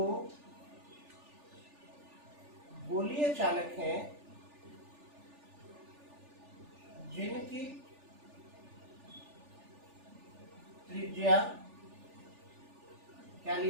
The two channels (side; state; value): left; late; 3.4 ms